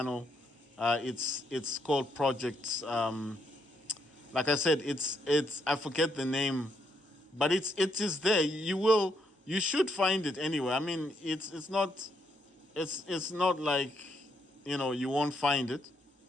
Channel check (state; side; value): normal; both; correlation 0.76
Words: It's called Projects. Like I said, it's I forget the name, but it is there. You should find it anyway. I mean, it's not like you won't find it.